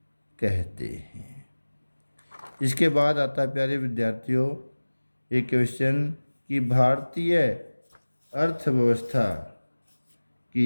कहते हैं। इसके बाद आता है प्यारे विद्यार्थियों एक क्वेश्चन कि भारतीय अर्थव्यवस्था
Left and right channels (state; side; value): inverted; both; correlation -1.00